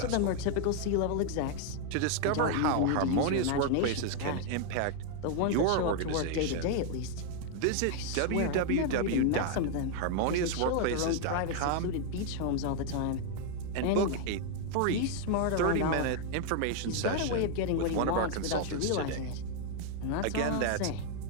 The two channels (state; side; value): different; both; correlation 0.00